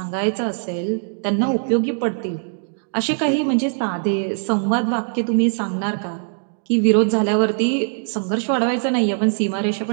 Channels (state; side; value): silent; left; digital silence